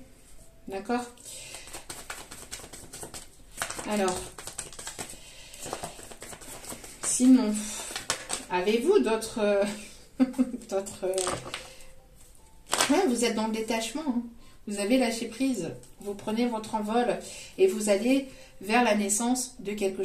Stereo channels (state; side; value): identical; both; correlation 1.00